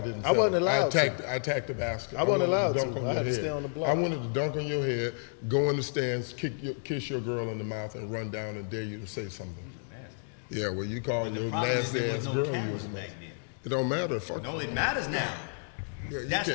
didn't. I wasn't settle. allowed to. I attacked the basket. I wasn't wanted allowed dunk to. on I your had to head. stay on the block. I wanted to dunk on your head, go in the stands, kiss your girl in the mouth, and run down and dare you to say something. Yeah, well, you call But the your problem is nasty there ass was no girl. You cameras was back then. It don't matter. Fuck. No, it matters now. Yeah, you That's the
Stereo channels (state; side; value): silent; right; digital silence